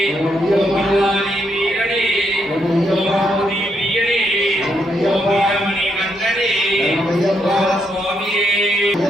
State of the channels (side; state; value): both; normal; correlation 0.78